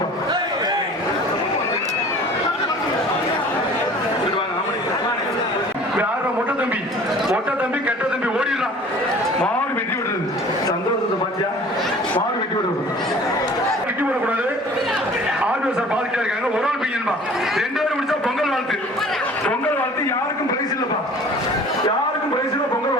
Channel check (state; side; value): normal; both; correlation 0.47